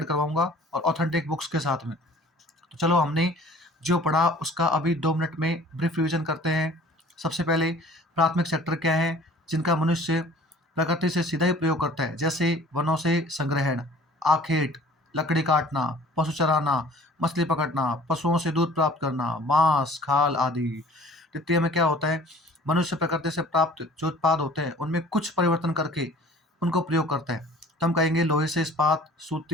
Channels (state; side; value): normal; both; correlation 0.49